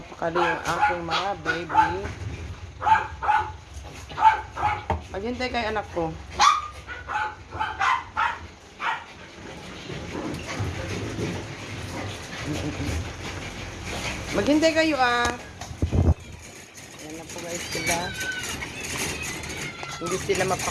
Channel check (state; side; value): identical; both; correlation 1.00